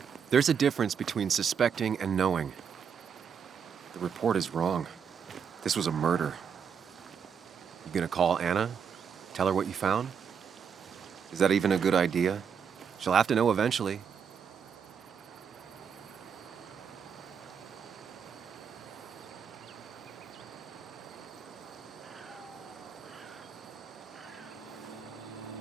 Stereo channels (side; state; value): left; quieter; 7.1 dB